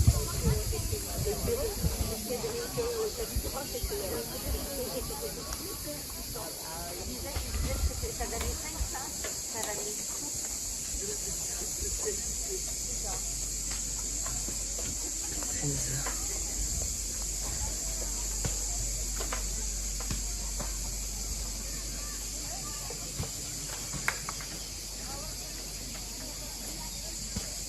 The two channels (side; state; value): both; identical; correlation 1.00